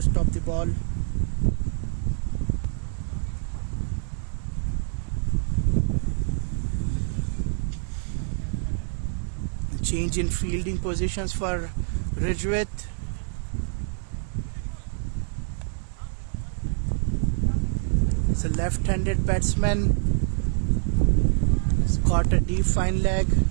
stop the ball. Change in fielding positions for Rijwit. It's a left-handed batsman. He's got a deep fine leg,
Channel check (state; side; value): silent; left; digital silence